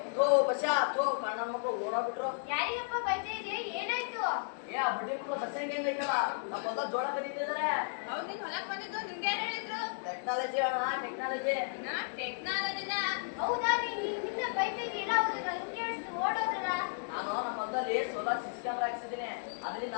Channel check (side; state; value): right; silent; digital silence